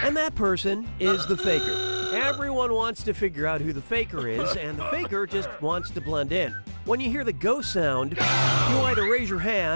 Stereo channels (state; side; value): inverted; both; correlation -1.00